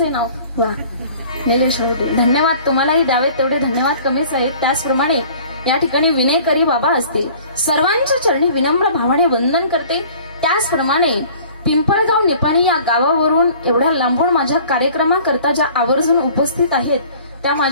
नाव? वा, निलेश आवटे. धन्यवाद. तुम्हालाही द्यावेत तेवढे धन्यवाद कमीच आहेत. त्याचप्रमाणे या ठिकाणी विनेकरी बाबा असतील, सर्वांच्या चरणी विनम्र भावाने वंदन करते. त्याचप्रमाणे पिंपळगाव निपाणी या गावावरून एवढ्या लांबून माझ्या कार्यक्रमाकरता ज्या आवर्जून उपस्थित आहेत त्या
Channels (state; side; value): inverted; both; correlation -0.49